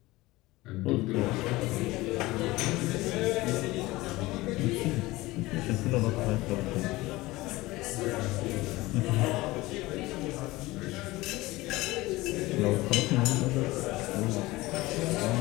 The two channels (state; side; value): quieter; right; 19.7 dB